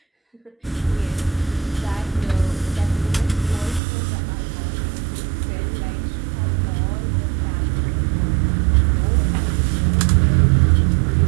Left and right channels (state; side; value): drops out; left; at 3.8 s